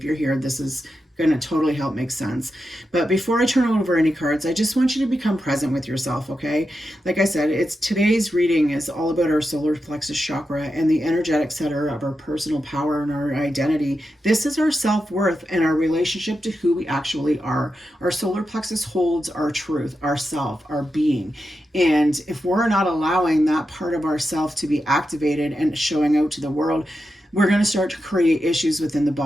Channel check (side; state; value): both; normal; correlation 0.89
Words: you're here, this is going to totally help make sense. But before I turn over any cards, I just want you to become present with yourself, okay? Like I said, today's reading is all about our solar plexus chakra and the energetic center of our personal power and our identity. This is our self-worth and our relationship to who we actually are. Our solar plexus holds our truth, our self, our being. And if we're not allowing that part of ourself to be activated and showing out to the world, we're going to start to create issues within the